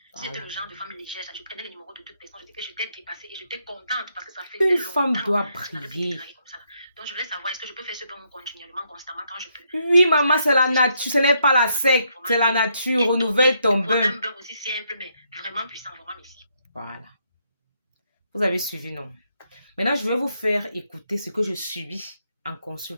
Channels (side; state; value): both; inverted; correlation -0.75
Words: C'était le genre de femme légère. Je prenais les numéros de toute personne. Je disais que j'étais dépassée et j'étais contente parce que ça faisait Une longtemps. femme doit Je n'avais plus été briller. draguée comme ça. Donc, je voulais savoir, est-ce que je peux faire ce bain continuellement, constamment, quand je peux? Oui, maman, c'est la nature. Ce n'est pas la secte. C'est la nature. Renouvelle ton bain. Un bain aussi simple, mais vraiment puissant. Vraiment, merci. Voilà. Vous avez suivi, non? Maintenant, je vais vous faire écouter ce que je subis en